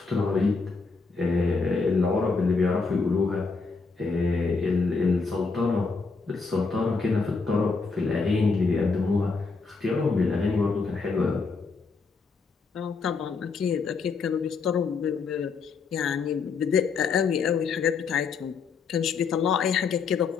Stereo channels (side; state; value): right; quieter; 4.7 dB